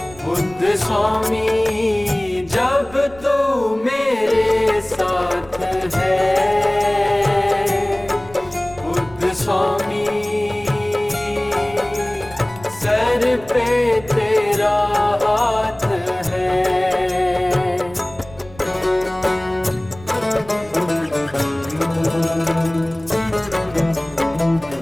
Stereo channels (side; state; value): right; noise; rumble, 21 dB below the sound